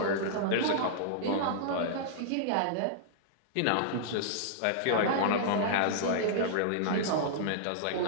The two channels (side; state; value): both; different; correlation -0.02